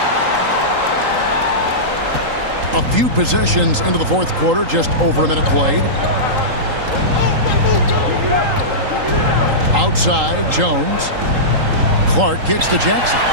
A few possessions into the fourth quarter, just over a minute played. Outside, Jones. Clark kicks to Jackson.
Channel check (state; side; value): late; left; 3.8 ms